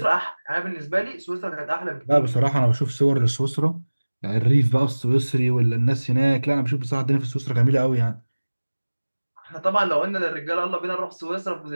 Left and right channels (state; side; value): inverted; both; correlation -1.00